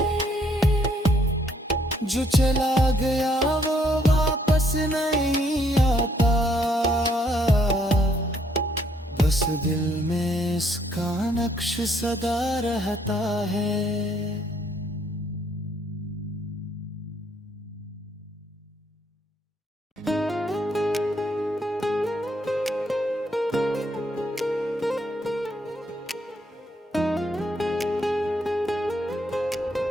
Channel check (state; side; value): normal; both; correlation 0.69